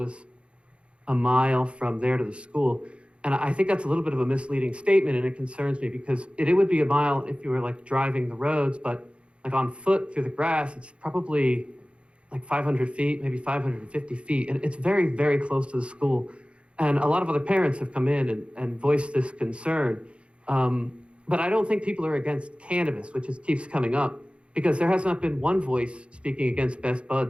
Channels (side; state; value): left; late; 0.059 ms